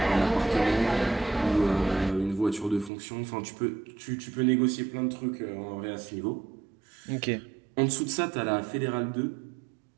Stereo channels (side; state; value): left; drops out; at 2.9 s